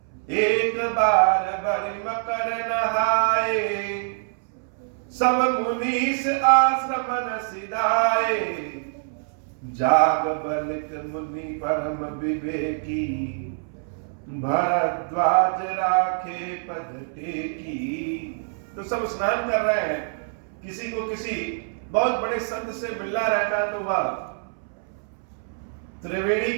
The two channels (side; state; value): left; silent; 62 dB below the other